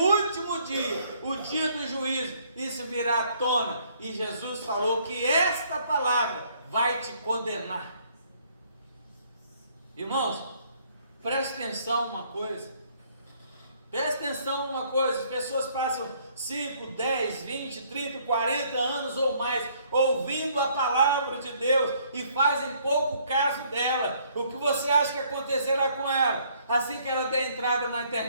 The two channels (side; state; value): both; inverted; correlation -0.64